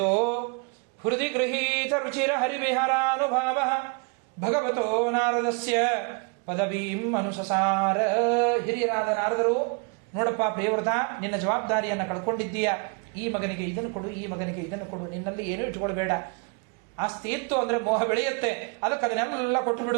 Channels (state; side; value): quieter; left; 32.6 dB